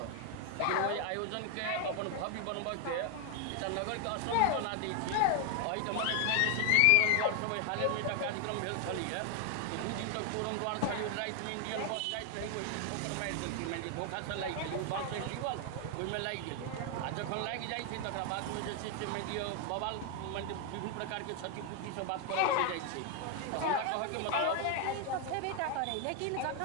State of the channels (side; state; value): both; different; correlation 0.01